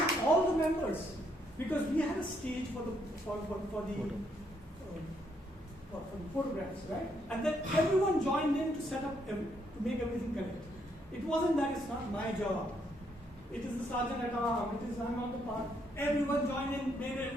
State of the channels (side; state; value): both; normal; correlation 0.73